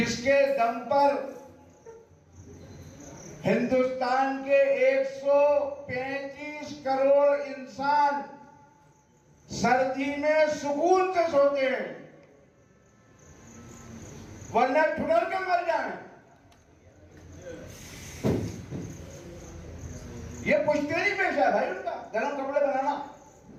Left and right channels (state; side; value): identical; both; correlation 1.00